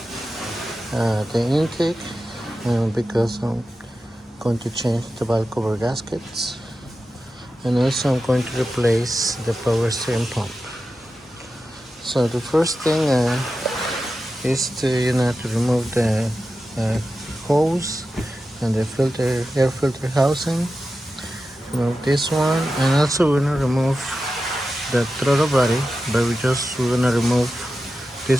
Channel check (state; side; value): normal; both; correlation 0.92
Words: the intake because I'm going to change the valve cover gaskets, and also I'm going to replace the power steering pump. So the first thing is to to remove the hose and the air filter housing. Remove this one, and also we're gonna remove the throttle body, but we're gonna remove